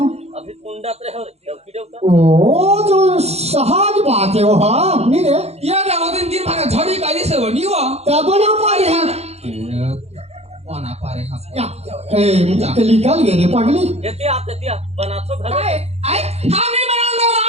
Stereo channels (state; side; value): late; left; 0.31 ms